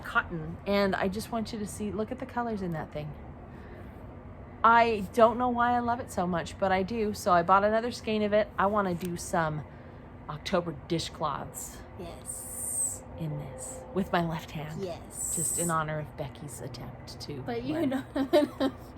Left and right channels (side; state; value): both; identical; correlation 1.00